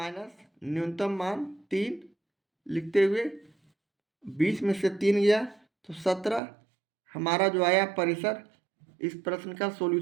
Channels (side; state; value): left; drops out; at 6.4 s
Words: न्यूनतम मान 3 लिखते हुए 20 में से 3 गया तो 17 हमारा जो आया परिसर इस प्रश्न का